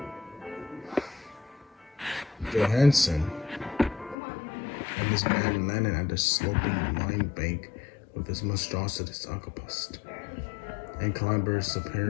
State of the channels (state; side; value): drops out; right; at 4.2 s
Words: Johannesson and his man landed at the sloping mine bank with his monstrous octopus, and clambered